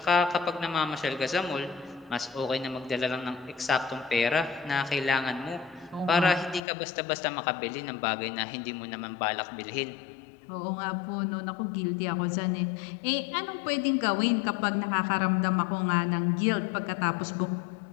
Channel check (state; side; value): drops out; right; at 6.6 s